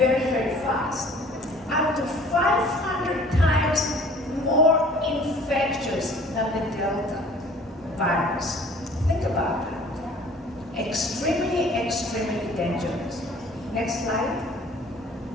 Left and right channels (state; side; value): normal; both; correlation 0.51